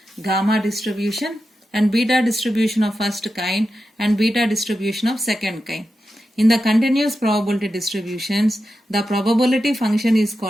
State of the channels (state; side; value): normal; both; correlation 0.90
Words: gamma distribution, and beta distribution of first kind and beta distribution of second kind. In the continuous probability distributions, the probability function is